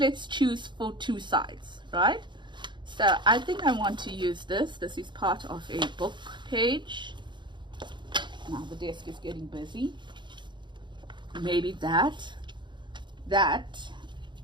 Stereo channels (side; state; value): left; late; 0.22 ms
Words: let's choose for two sides, right? So I think I want to use this. This is part of a book page. Now the desk is getting busy. Maybe that.